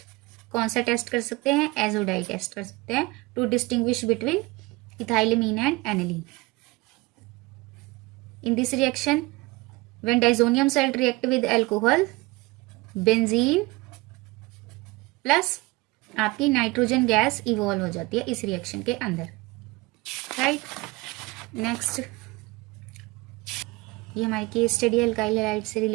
कौन सा test कर सकते हैं, azo dye test कर सकते हैं to distinguish between ethylamine and aniline. In this reaction, when disonium salt react with alcohol, benzene plus आपकी नाइट्रोजन गैस इवॉल्व हो जाती है इस रिएक्शन के अंदर, राइट। नेक्स्ट ये हमारी केस स्टडी अल्काइल हैलाइड से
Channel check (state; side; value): quieter; left; 23.1 dB